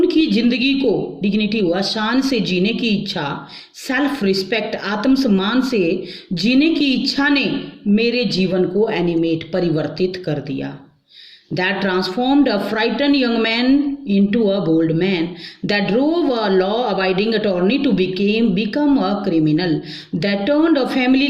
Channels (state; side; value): identical; both; correlation 1.00